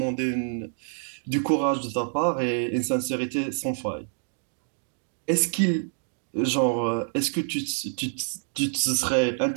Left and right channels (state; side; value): silent; left; digital silence